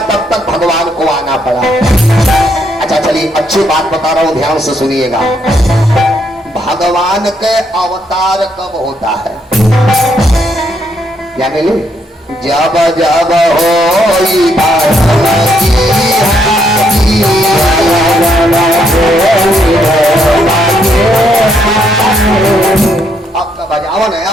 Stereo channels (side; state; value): both; normal; correlation 0.74